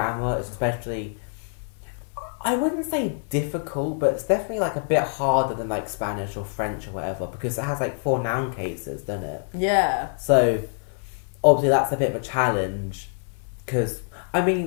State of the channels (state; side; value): silent; right; digital silence